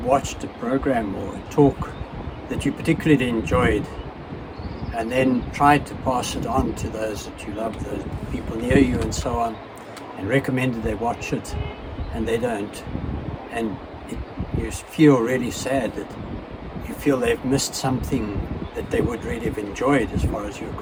watched a program or a talk that you particularly enjoyed and then tried to pass it on to those that you love, those people near you and so on, and recommended they watch it and they don't, and you feel really sad that you feel they've missed something that they would really have enjoyed as far as you're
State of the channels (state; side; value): identical; both; correlation 1.00